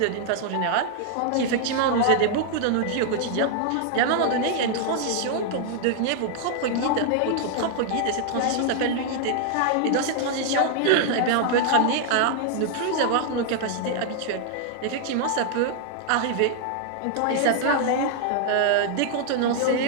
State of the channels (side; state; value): both; different; correlation 0.00